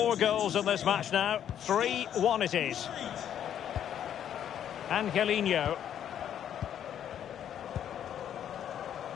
goals in this match now. 3-1 it is. Angelino.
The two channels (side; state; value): right; quieter; 9.8 dB